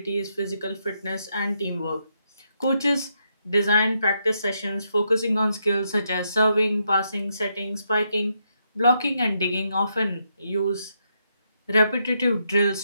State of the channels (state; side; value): inverted; both; correlation -0.79